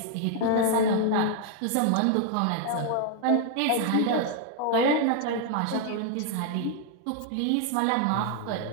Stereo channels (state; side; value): different; both; correlation 0.00